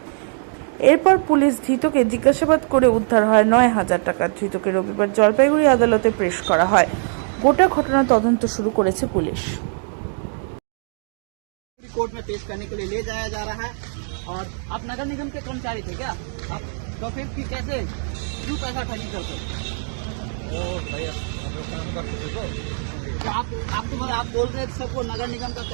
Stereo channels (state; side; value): silent; left; 60 dB below the other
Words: এরপর পুলিশ ধৃতকে জিজ্ঞাসাবাদ করে উদ্ধার হয় 9,000 টাকা। ধৃতকে রবিবার জলপাইগুড়ি আদালতে পেশ করা হয়। গোটা ঘটনা তদন্ত শুরু করেছে পুলিশ। कोर्ट में पेश करने के लिए ले जाया जा रहा है। और आप नगर निगम के कर्मचारी थे क्या? आप तो फिर कैसे क्यों पैसा ठगी करते? आप बोल रहे थे सबको नगर निगम का